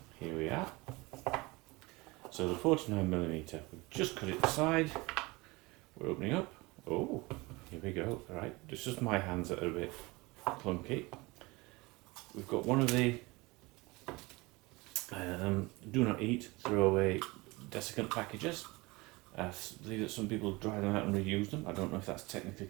Here we are. So the 49mm, we've just cut it aside. We're opening up. Oh, here we go. All right, it's just my hands that are a bit clunky. We've got one of the do not eat, throw away desiccant packages. I believe that some people dry them out and reuse them. I don't know if that's technically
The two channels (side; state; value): left; quieter; 23.5 dB